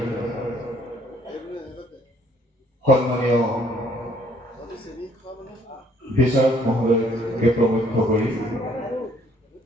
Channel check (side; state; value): both; normal; correlation 0.63